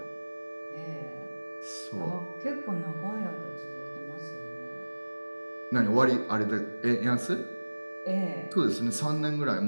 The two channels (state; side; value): inverted; both; correlation -1.00